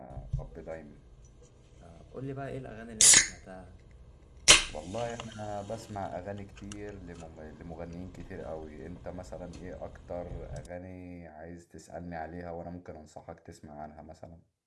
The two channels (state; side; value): identical; both; correlation 1.00